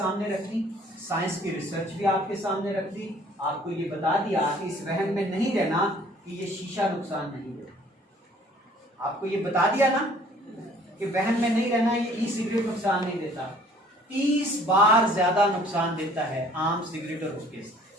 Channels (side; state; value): both; normal; correlation 0.55